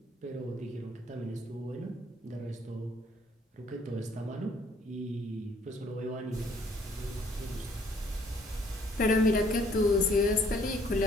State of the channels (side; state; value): both; normal; correlation 0.62